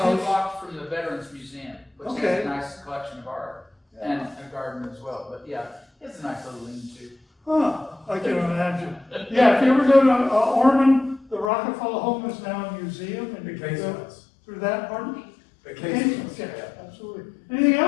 house. blocks from the Veterans Museum, which has Okay. a nice collection of art and a garden as well. But yeah, it's a nice little lean-to. Huh, I can imagine. Yeah, if you ever go to Ormond, the Rockefeller home is now a museum, and you can go through that part. The casements, Yeah, absolutely. Anything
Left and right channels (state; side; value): drops out; right; at 11.5 s